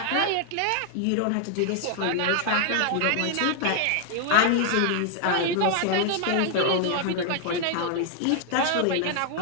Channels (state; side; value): different; both; correlation 0.00